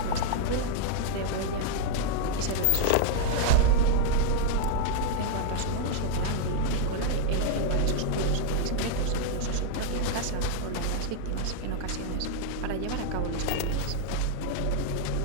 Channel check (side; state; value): both; different; correlation 0.00